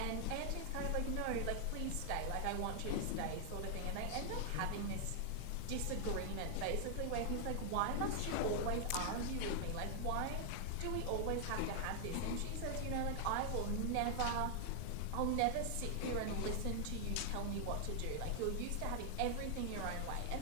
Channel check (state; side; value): different; both; correlation 0.00